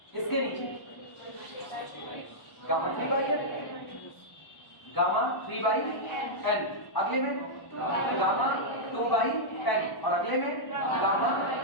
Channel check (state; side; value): late; right; 1.1 ms